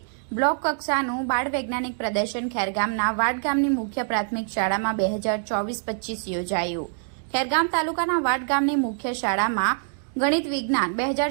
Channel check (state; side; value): silent; left; digital silence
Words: બ્લોક કક્ષાનું બાળ વૈજ્ઞાનિક પ્રદર્શન ખેરગામના વાડ ગામની મુખ્ય પ્રાથમિક શાળામાં 2024-25 યોજાયું। ખેરગામ તાલુકાના વાડ ગામની મુખ્ય શાળામાં ગણિત વિજ્ઞાન